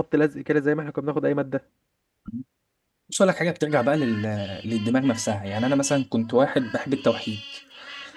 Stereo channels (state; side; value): identical; both; correlation 1.00